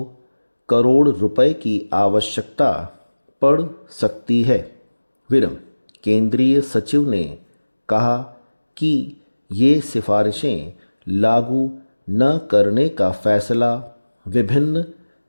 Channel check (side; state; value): both; inverted; correlation -1.00